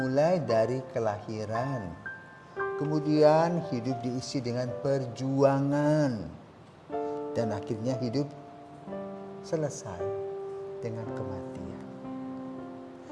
dari kelahiran, kemudian hidup diisi dengan perjuangan, dan akhirnya hidup selesai dengan kematian.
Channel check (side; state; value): both; identical; correlation 1.00